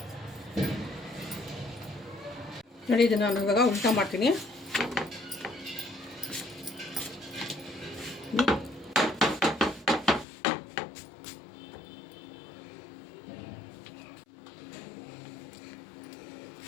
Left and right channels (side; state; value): right; drops out; at 10.2 s